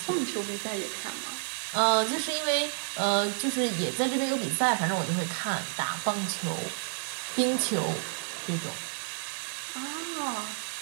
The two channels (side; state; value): left; silent; 58 dB below the other